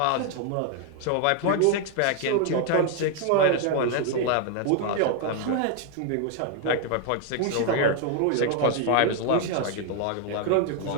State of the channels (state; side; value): different; both; correlation 0.00